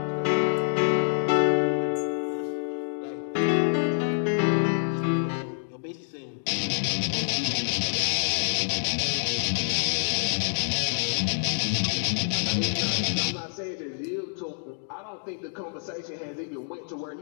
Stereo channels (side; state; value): right; silent; digital silence